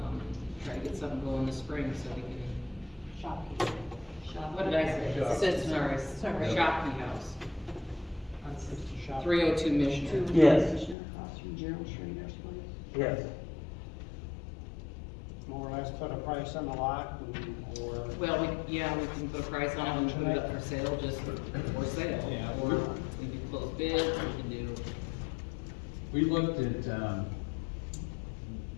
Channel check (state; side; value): drops out; right; at 11.0 s